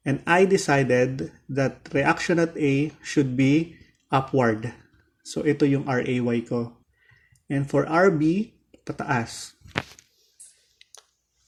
And I decided that reaction at A should be upward. So ito yung RAY ko. And for RB, pataas.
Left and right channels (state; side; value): identical; both; correlation 1.00